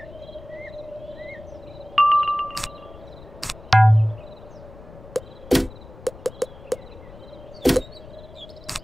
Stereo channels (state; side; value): noise; left; rumble, 18 dB below the sound